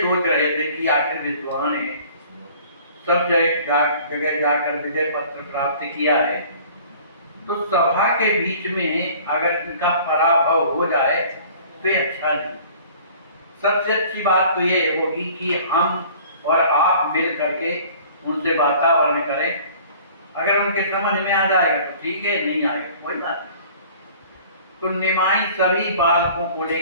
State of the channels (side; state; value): both; inverted; correlation -0.49